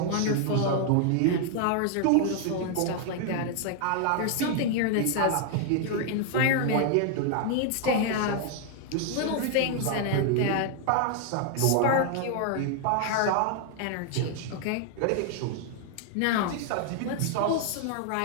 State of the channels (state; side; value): different; both; correlation 0.00